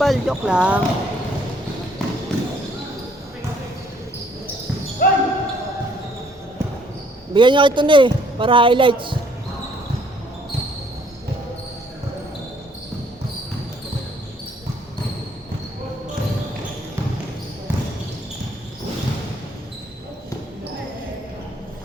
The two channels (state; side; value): normal; both; correlation 0.63